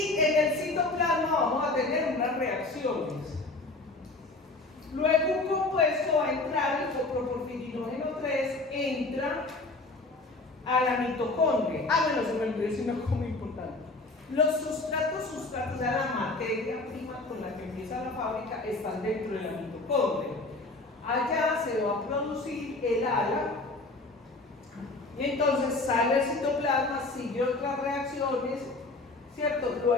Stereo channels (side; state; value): right; quieter; 3.2 dB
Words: en el citoplasma vamos a tener unas reacciones. Luego un compuesto va a entrar, el coproporfirinógeno 3 entra a la mitocondria. Bueno, se me olvidó decir una cosa muy importante. Los sustratos, o sea, la materia prima con la que empieza la fábrica, están dentro de la mitocondria. Allá se va a producir el ala, y entonces sale el citoplasma, sigue otras reacciones, ¿cierto?